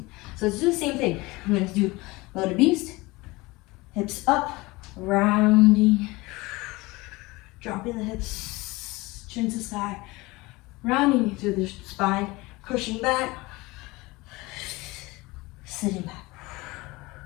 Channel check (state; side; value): quieter; right; 22.3 dB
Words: So let's do the same thing. I'm going to do loaded beast, hips up, rounding, dropping the hips, chin to sky, rounding through the spine, pushing back, sitting back.